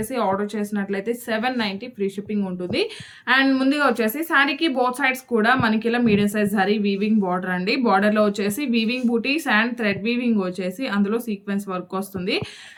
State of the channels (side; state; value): both; identical; correlation 1.00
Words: ఆర్డర్ చేసినట్లయితే 790 ఫ్రీ షిప్పింగ్ ఉంటుంది. అండ్ ముందుగా వచ్చేసి శారీకి బోత్ సైడ్స్ కూడా మనకి ఇలా medium size zari weaving border అండి. బార్డర్లో వచ్చేసి వీవింగ్ బూటీస్ అండ్ థ్రెడ్ వీవింగ్ వచ్చేసి అందులో సీక్వెన్స్ వర్క్ వస్తుంది.